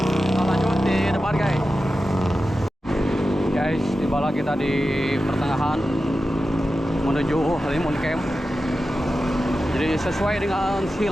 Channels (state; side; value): normal; both; correlation 0.92